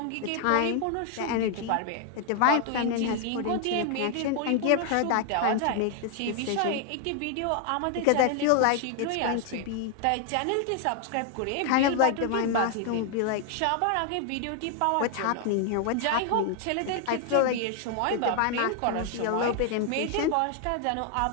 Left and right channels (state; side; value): different; both; correlation 0.00